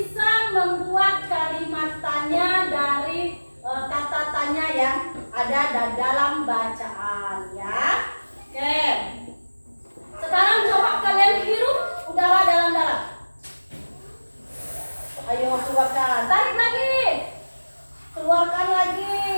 membuat kalimat tanya dari kata tanya yang ada dalam bacaan ya. Oke. Sekarang coba kalian hirup udara dalam-dalam. Ayo keluarkan, tarik lagi. Keluarkan lagi,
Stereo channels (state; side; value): inverted; both; correlation -1.00